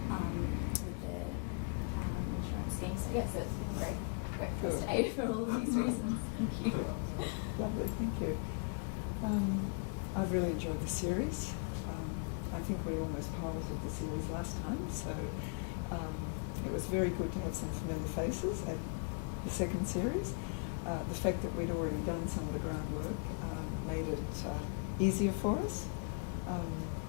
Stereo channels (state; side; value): quieter; right; 38.4 dB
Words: with the insurance scheme. So yes, it's been a great first day for all of these reasons. Thank you. Lovely, thank you. I've really enjoyed the series. I think we almost piloted the series last time, so it was very good to have some familiar faces at the second series. The fact that we'd already done some of the groundwork made it easier for us.